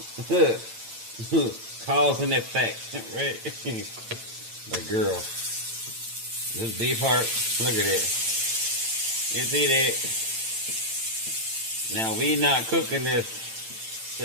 Cause and effect, right? The girl. This beef heart, look at it. You see that? Now we not cooking this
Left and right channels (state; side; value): late; left; 8.9 ms